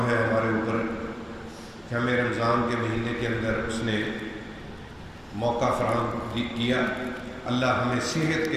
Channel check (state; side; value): identical; both; correlation 1.00